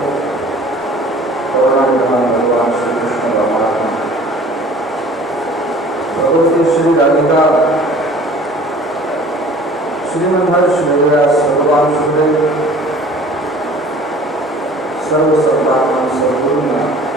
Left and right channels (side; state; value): both; normal; correlation 0.48